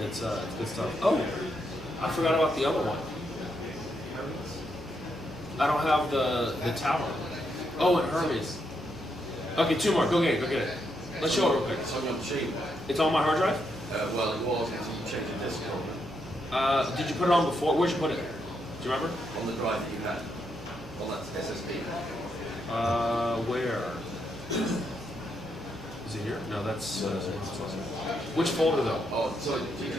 good stuff. Oh, I forgot about the other one. I don't have the tower. Oh, and Hermes. Okay, 2 more. Go get it. Let's show it real quick. It's on your machine. It's on my hard drive? Well, it was until you changed the disk Did you put it on before? Where'd you put it? Do you remember? on the drive that you had. On that SSD. Where? Is it here? No, that's. Which folder though? Oh, so did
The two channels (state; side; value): noise; right; hum, 16 dB below the sound